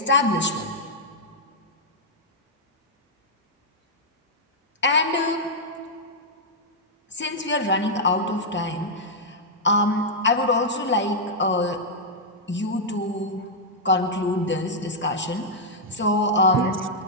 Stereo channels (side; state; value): both; normal; correlation -0.06